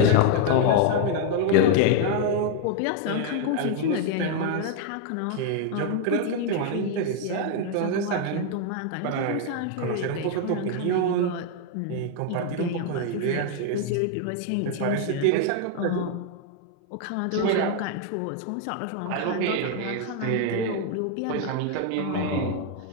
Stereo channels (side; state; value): both; different; correlation 0.00